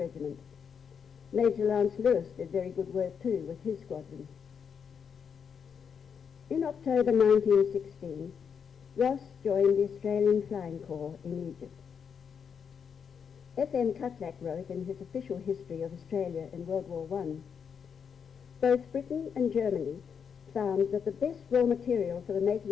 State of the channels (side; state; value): right; quieter; 6.9 dB